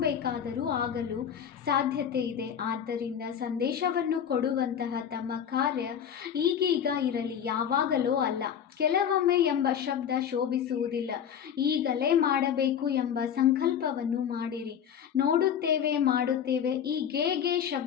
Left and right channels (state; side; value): quieter; right; 8.6 dB